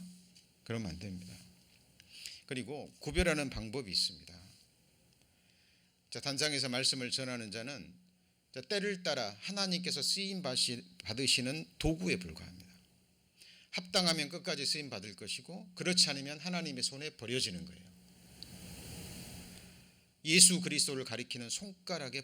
그러면 안 됩니다. 그리고 구별하는 방법이 있습니다. 자, 단상에서 말씀을 전하는 자는 때를 따라 하나님께서 쓰임 받으시는 도구에 불과합니다. 합당하면 끝까지 쓰임 받을 것이고, 그렇지 않으면 하나님의 손에 버려지는 거예요. 예수 그리스도를 가리키는 손가락에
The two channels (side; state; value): both; identical; correlation 1.00